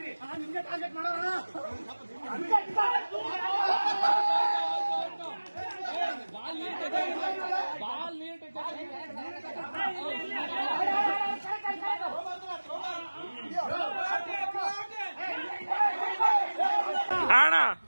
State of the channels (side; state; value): both; inverted; correlation -1.00